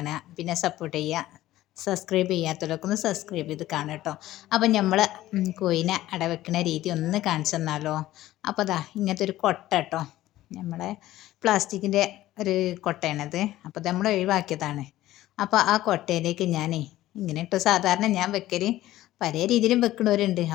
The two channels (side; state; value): right; quieter; 15.1 dB